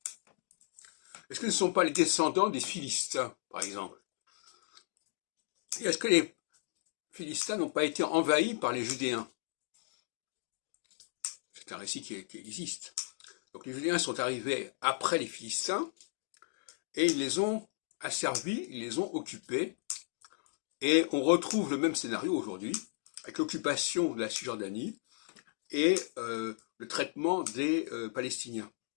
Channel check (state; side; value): silent; right; digital silence